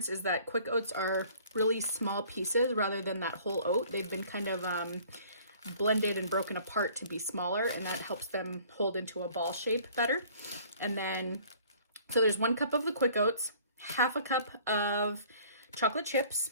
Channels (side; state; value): both; inverted; correlation -0.54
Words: is that quick oats are really small pieces rather than that whole oat. They've been kind of blended and broken apart to be smaller, and that helps them hold into a ball shape better. And then, so there's 1 cup of the quick oats, half a cup of chocolate chips,